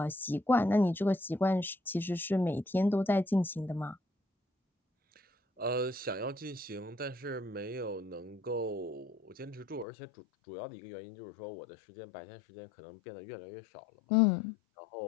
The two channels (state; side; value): drops out; right; at 9.9 s